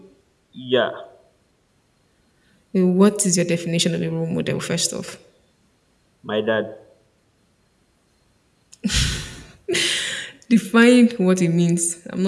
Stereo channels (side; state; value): both; identical; correlation 1.00